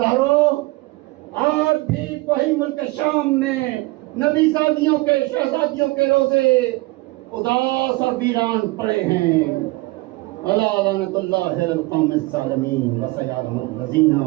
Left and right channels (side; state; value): left; quieter; 22.1 dB